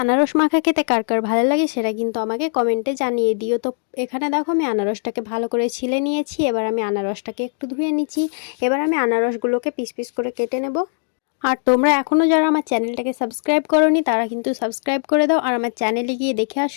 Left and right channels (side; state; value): right; silent; digital silence